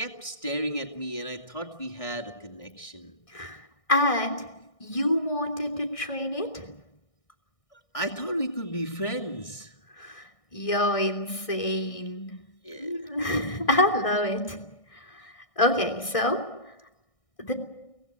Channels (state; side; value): late; right; 1.6 ms